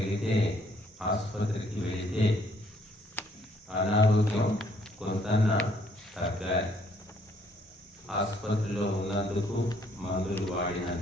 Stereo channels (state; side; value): normal; both; correlation 0.66